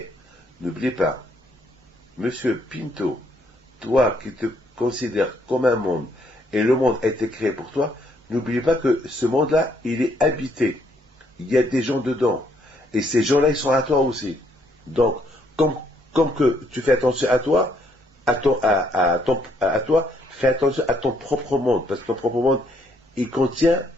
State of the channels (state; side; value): normal; both; correlation 0.70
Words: n'oubliez pas, Monsieur Pinto, toi qui te considères comme un monde, et le monde a été créé pour toi, n'oubliez pas que ce monde-là, il est habité. Il y a des gens dedans. Et ces gens-là, ils sont à toi aussi. Donc, comme que tu fais attention à toi, à toi, fais attention à ton propre monde. Parce que ton propre monde, il contient